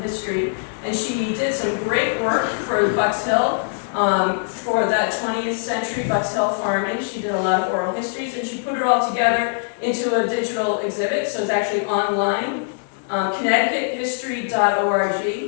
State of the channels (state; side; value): silent; right; digital silence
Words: history, and she did some great work for Bucks Hill, for that 20th century Bucks Hill farming. She did a lot of oral histories, and she put it all together into a digital exhibit, so it's actually online.